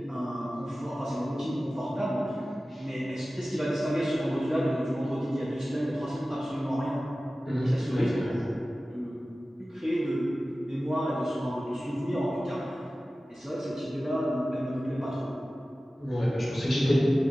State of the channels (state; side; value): normal; both; correlation 0.96